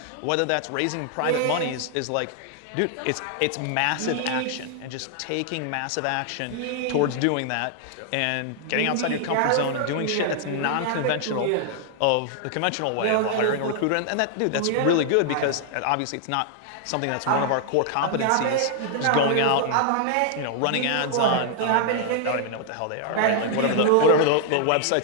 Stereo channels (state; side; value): different; both; correlation 0.00